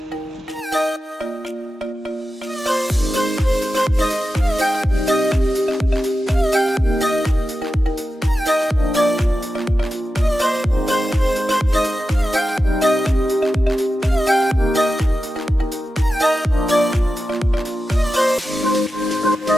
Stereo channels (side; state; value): both; normal; correlation 0.91